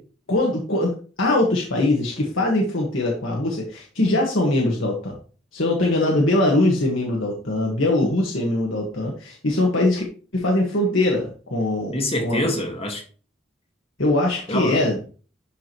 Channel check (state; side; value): normal; both; correlation 0.47